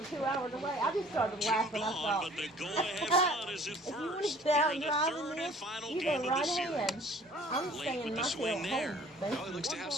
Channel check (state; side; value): normal; both; correlation 0.52